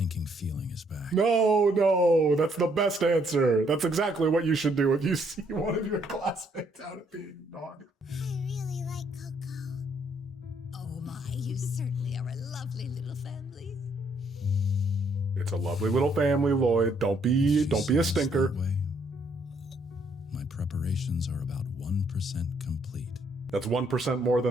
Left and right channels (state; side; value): normal; both; correlation 0.69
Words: feeling is back. No, that's the best answer. That's exactly what you should do if you see one of your classmates out at being naughty. I really like Coco. Oh my, you certainly are a lovely little family. It's a lovely little family, Loid. Don't be a stinker. My preparations are about 1% complete. That's 1% more